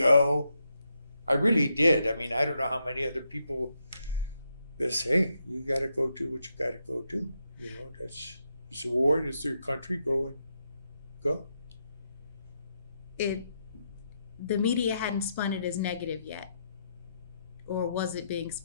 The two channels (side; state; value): both; inverted; correlation -0.81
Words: I really did. I mean, I don't know how many other people that say, you got to go do what you got to go do. It's a war, it's their country, go. The media hadn't spun it as negative yet. Or was it being